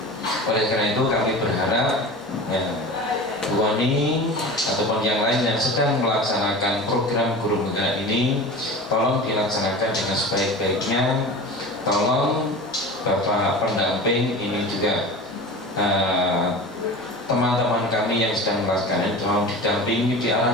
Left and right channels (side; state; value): both; normal; correlation 0.34